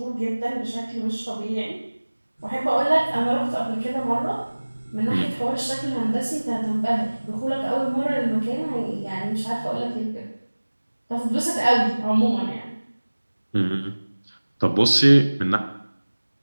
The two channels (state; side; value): inverted; both; correlation -1.00